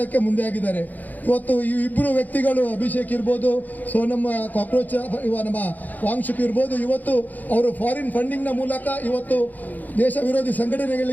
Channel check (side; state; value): right; late; 0.082 ms